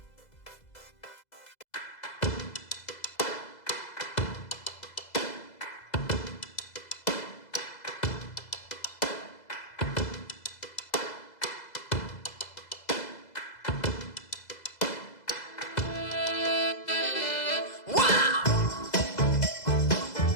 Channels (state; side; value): late; right; 2.0 ms